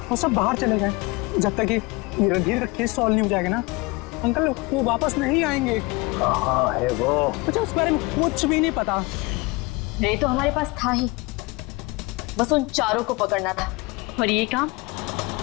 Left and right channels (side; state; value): right; quieter; 24.8 dB